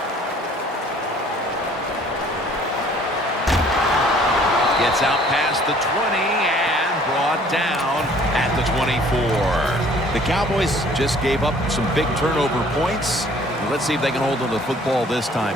Gets out past the 20 and brought down at the 24. The Cowboys just gave up some big turnover points. Let's see if they can hold on to the football this time,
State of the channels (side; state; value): both; normal; correlation 0.55